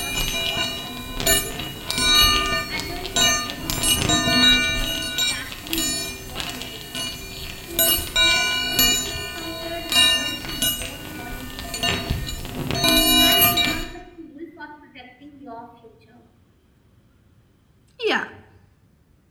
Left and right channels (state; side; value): identical; both; correlation 1.00